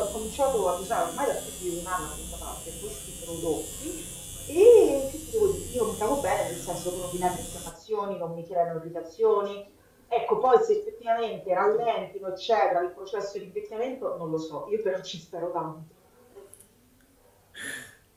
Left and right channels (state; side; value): identical; both; correlation 1.00